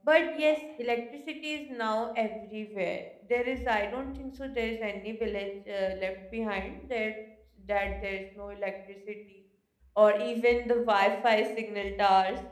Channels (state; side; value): identical; both; correlation 1.00